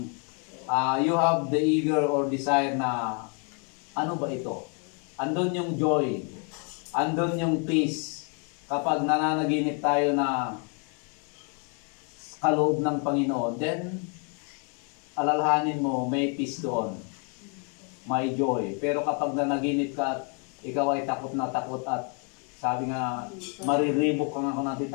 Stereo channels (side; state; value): right; quieter; 38.0 dB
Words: you have the eager or desire na ano ba ito? Andun yung joy, andun yung peace. Kapag nananaginip tayo na kaloob ng Panginoon, then alalahanin mo may peace doon, may joy. Pero kapag nanaginip ka at ikaw ay takot na takot at sabi nga mariribok ka nga kung natin